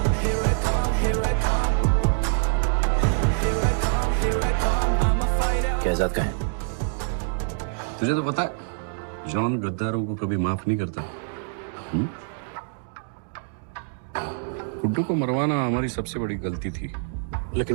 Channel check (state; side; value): silent; left; digital silence